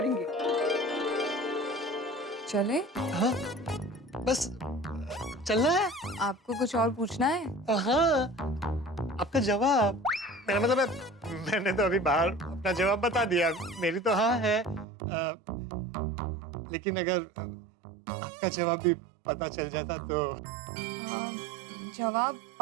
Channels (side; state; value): left; drops out; at 14.9 s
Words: चले? हाँ, बस चलना है। आपको कुछ और पूछना है? हाँ, आपका जवाब। मेरा मतलब है, मैंने तो अभी बाहर अपना जवाब बता दिया। मेरी तो हाँ है, लेकिन अगर आपका जवाब भी पता चल जाता तो। जवाब